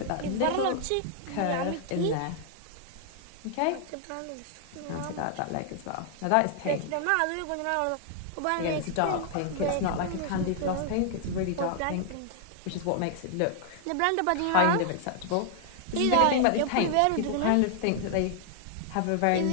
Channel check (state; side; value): different; both; correlation 0.00